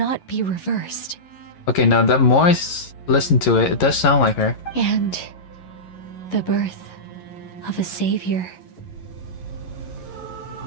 be reversed. Okay, now the more I listen to it, it does sound like her. And the birth of a savior.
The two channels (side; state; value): right; late; 11 ms